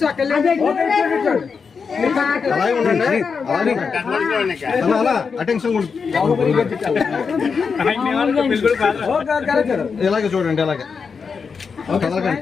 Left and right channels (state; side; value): quieter; right; 5.6 dB